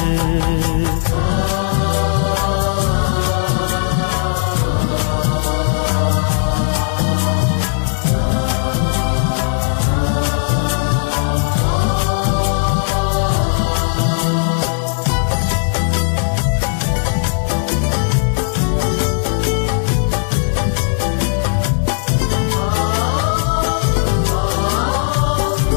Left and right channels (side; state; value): right; silent; digital silence